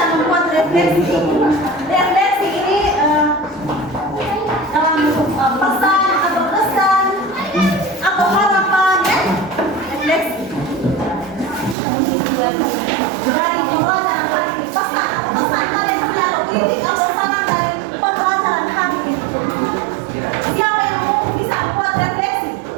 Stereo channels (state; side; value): drops out; left; at 11.8 s